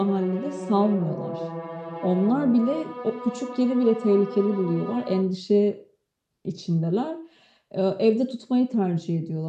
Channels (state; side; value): identical; both; correlation 1.00